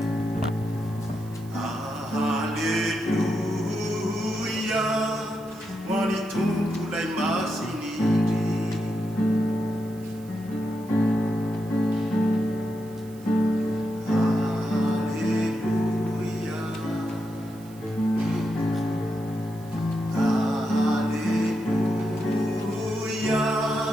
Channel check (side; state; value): right; noise; hiss, 24 dB below the sound